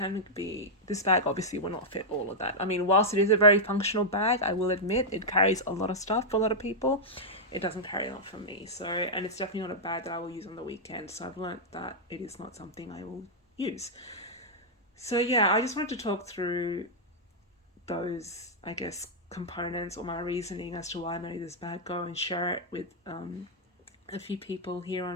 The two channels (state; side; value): normal; both; correlation -0.05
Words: be, this bag obviously will not fit all of that. I mean, whilst it is a very functional bag, I will admit it carries a lot of stuff for a lot of people. It doesn't carry a lot for me. So, and it's definitely not a bag that I will use on the weekend. So I've learnt that it is not something I will use. So yeah, I just wanted to talk through those, I guess, components or my reasoning as to why I made this bag go, and share it with a few people here